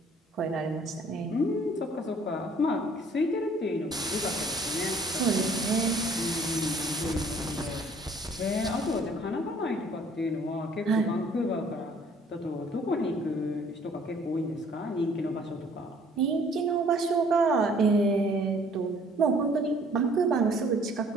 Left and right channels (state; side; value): normal; both; correlation 0.57